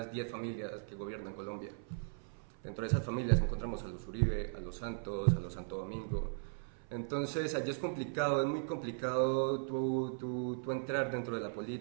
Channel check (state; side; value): silent; left; 53 dB below the other